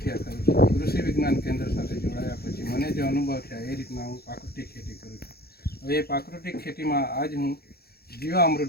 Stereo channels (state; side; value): late; right; 0.46 ms